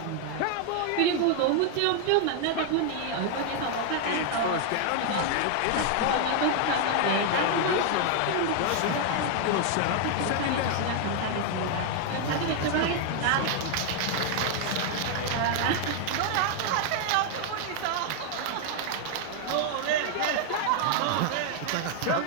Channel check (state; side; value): different; both; correlation 0.00